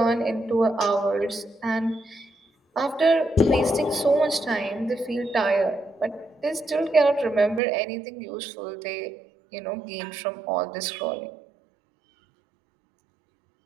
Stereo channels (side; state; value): left; drops out; at 7.6 s